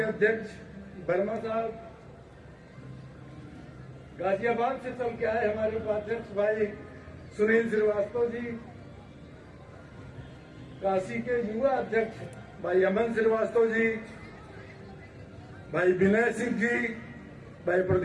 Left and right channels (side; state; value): both; identical; correlation 1.00